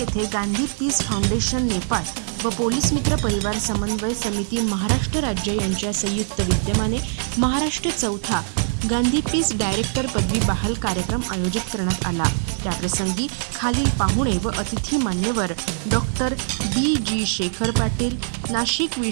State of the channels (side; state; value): left; silent; digital silence